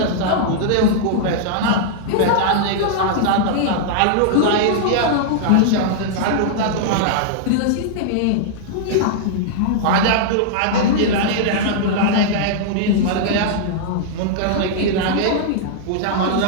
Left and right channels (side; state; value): both; different; correlation -0.01